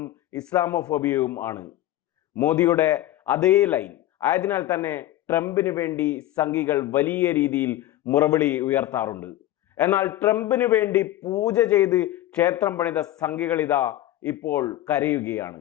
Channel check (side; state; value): right; quieter; 14.3 dB